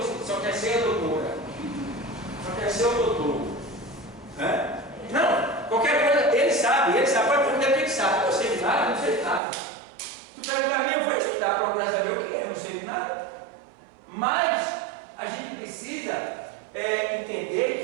só quer ser a doutora, só quer ser o doutor. Né? Não, qualquer coisa, ele sabe, pode perguntar o que ele sabe. Eu sei de nada, não sei de nada. Tu perguntar a mim, eu vou estudar, procurar saber o que é, eu não sei de nada. Mas a gente precisa entender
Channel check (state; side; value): drops out; left; at 9.4 s